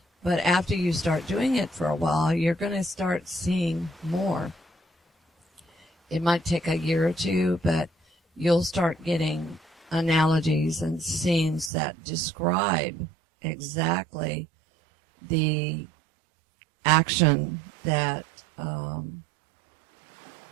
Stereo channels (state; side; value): drops out; left; at 11.7 s